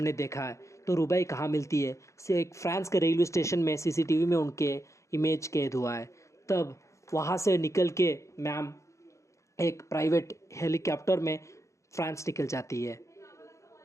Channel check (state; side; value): late; right; 0.15 ms